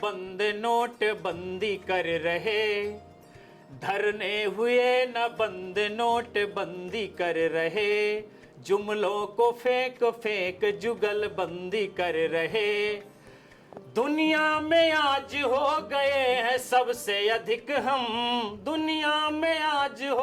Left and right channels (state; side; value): identical; both; correlation 1.00